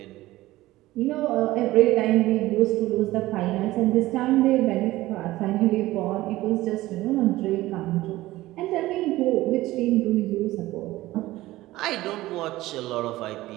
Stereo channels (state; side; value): quieter; left; 17.2 dB